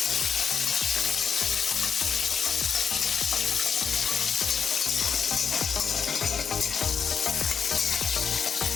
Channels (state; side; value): quieter; right; 6.6 dB